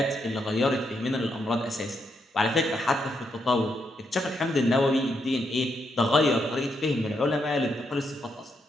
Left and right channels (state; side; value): normal; both; correlation 0.79